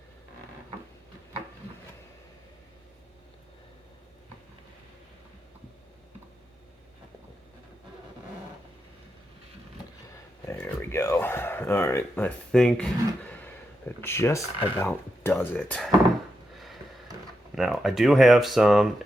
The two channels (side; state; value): both; normal; correlation 0.86